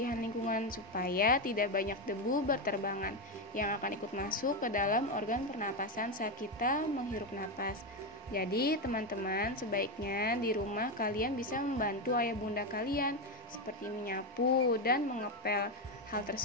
lingkungan supaya tidak banyak debu berterbangan yang akan ikut masuk ke dalam organ pernapasan saat kita menghirup napas. Jadi teman-teman, sebaiknya di rumah kalian bisa membantu ayah bunda kalian seperti menyapu dan mengepel. Hal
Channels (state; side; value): normal; both; correlation 0.10